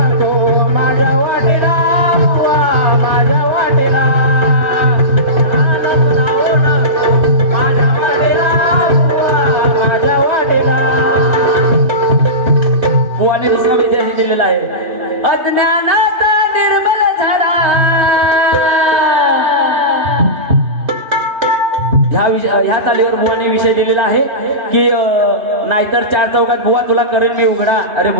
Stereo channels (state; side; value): late; left; 3.1 ms